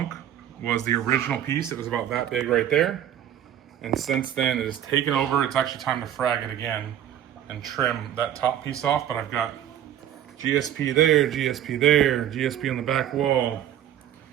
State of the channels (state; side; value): quieter; left; 10.8 dB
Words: was the original piece. It was about that big right there. And since then it has taken over. It's actually time to frag it again and trim that top piece off. But I've got GSP there, GSP there, GSP on the back wall,